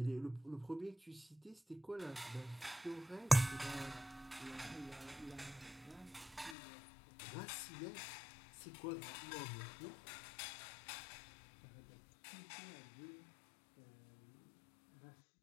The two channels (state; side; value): drops out; right; at 6.6 s